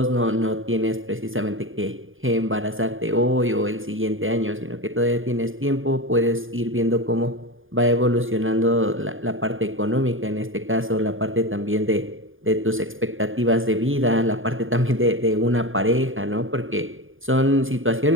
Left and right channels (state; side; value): late; left; 0.59 ms